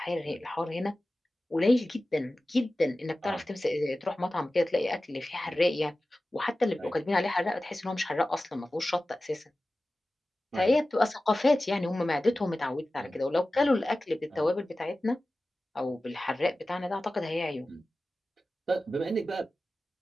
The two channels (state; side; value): normal; both; correlation 0.95